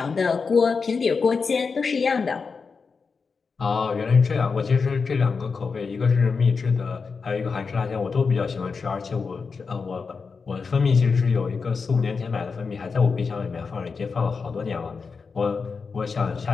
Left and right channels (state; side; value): quieter; right; 5.0 dB